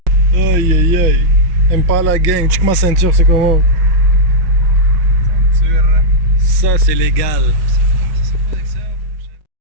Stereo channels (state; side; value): late; left; 6.1 ms